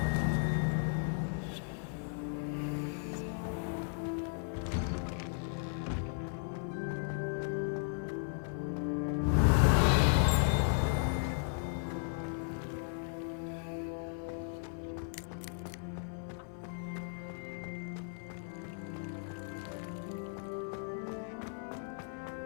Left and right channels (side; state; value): right; silent; 54 dB below the other